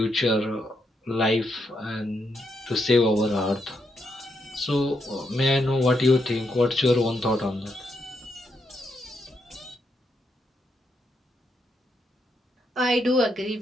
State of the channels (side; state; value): both; normal; correlation 0.80